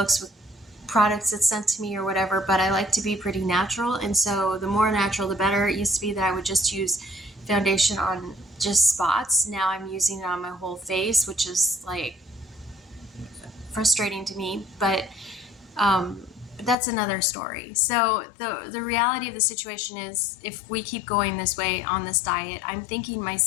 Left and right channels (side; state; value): right; drops out; at 16.8 s